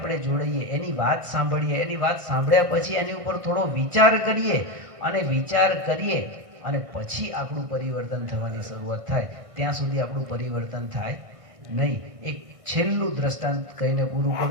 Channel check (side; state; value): left; late; 1.5 ms